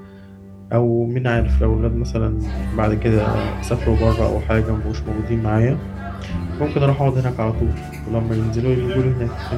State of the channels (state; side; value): identical; both; correlation 1.00